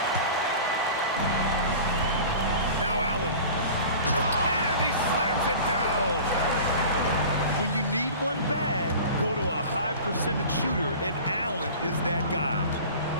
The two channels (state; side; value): inverted; both; correlation -0.39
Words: Now Allen. And he slams it down. When you need one bad, go to a high percentage shooter, and Allen is that guy.